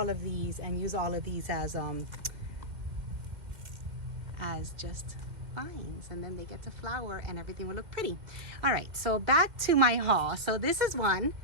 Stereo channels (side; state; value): left; late; 2.1 ms